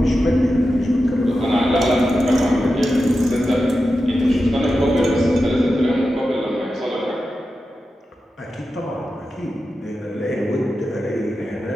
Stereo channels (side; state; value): both; normal; correlation 0.91